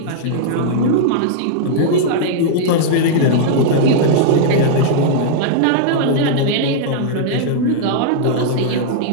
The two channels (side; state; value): both; different; correlation -0.01